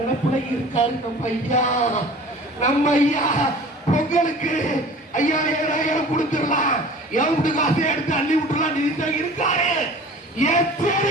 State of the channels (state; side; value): normal; both; correlation 0.44